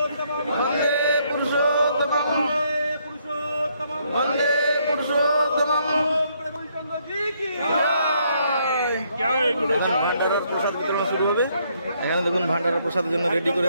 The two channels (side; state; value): both; inverted; correlation -0.71